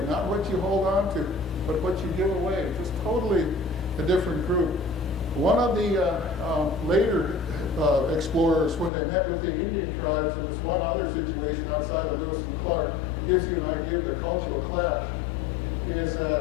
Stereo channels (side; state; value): right; drops out; at 8.9 s